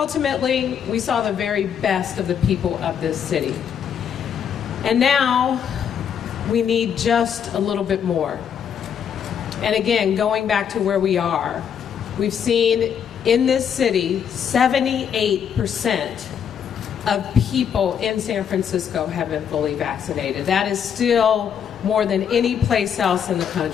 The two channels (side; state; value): right; quieter; 8.1 dB